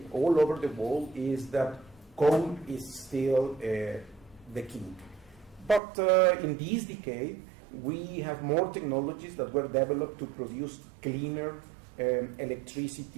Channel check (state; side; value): drops out; left; at 5.8 s